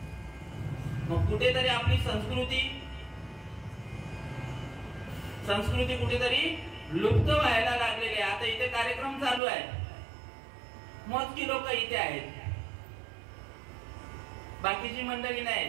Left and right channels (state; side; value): drops out; left; at 9.4 s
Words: मग कुठेतरी आपली संस्कृती कुठेतरी लुप्त व्हायला लागलेली आहे. आता इथे कार्यक्रम चालू आहे, मोजकी लोक इथे आहेत, बाकीची मंडळी